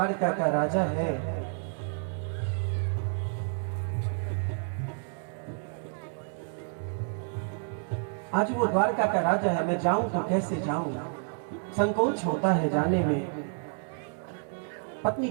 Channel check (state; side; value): silent; left; 58 dB below the other